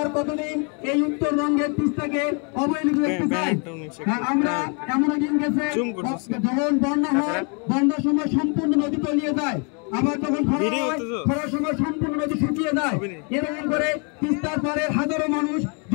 কতদিন এই উত্তরবঙ্গের তিস্তাকে অবহেলিত দেখতে চাই? আমরা এমন দিন গেছে যখন বন্যা হয়, বন্যার সময় সম্পূর্ণ নদী তলিয়ে যায়, আবার যখন খরার সময় সম্পূর্ণ নদী শুকিয়ে যায়। এরকম করে তিস্তার পারে হাজারো মানুষ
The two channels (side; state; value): right; quieter; 36.2 dB